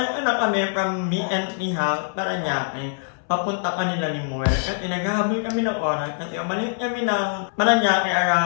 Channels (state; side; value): silent; right; 63 dB below the other